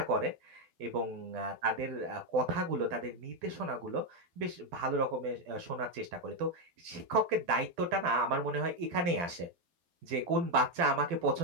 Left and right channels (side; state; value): left; late; 12 ms